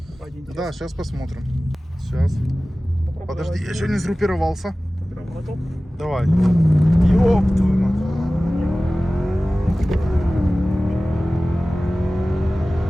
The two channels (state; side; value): normal; both; correlation 0.97